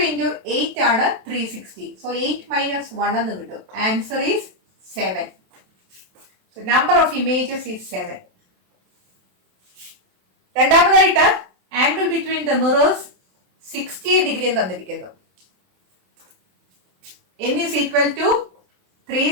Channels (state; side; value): late; left; 27 ms